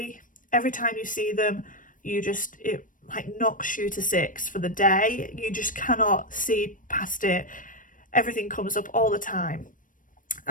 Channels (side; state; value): right; late; 0.38 ms